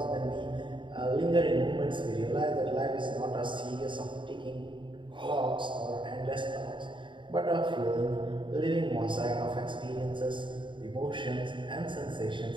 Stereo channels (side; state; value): left; late; 0.23 ms